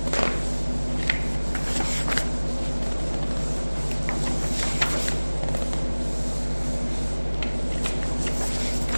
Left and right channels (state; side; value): inverted; both; correlation -1.00